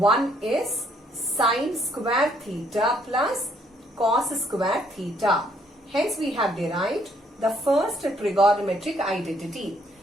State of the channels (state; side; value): normal; both; correlation 0.68